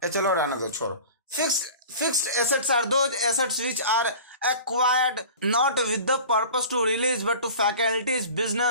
चलो रहने दो, छोड़ो। Fixed assets are those assets which are acquired not with the purpose to release but to facilitate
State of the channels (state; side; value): inverted; both; correlation -0.40